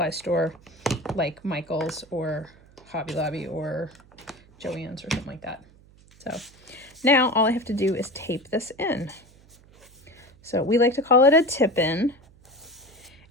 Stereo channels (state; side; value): noise; right; hum, 27 dB below the sound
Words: store like Michael's or Hobby Lobby or Joann's or something like that. So now all I have to do is tape this in. So we like to call it a tip-in.